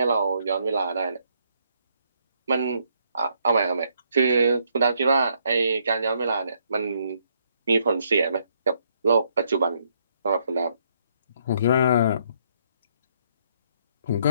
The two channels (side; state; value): both; inverted; correlation -0.72